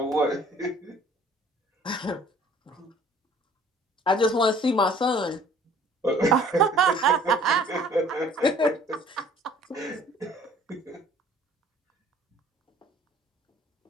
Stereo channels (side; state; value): both; normal; correlation 0.53